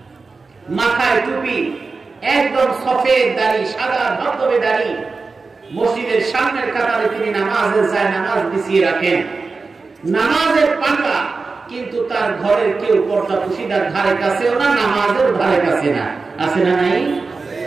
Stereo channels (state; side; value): quieter; left; 4.2 dB